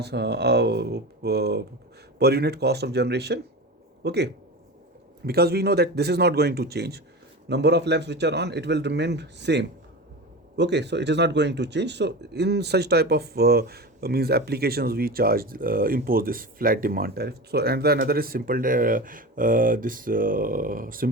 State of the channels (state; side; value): normal; both; correlation 0.27